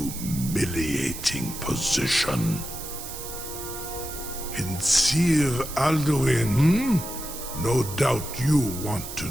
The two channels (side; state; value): right; noise; hiss, 10 dB below the sound